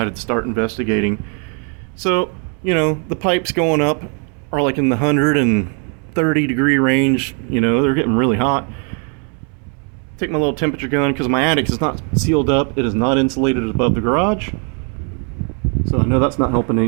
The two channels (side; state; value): left; quieter; 39.5 dB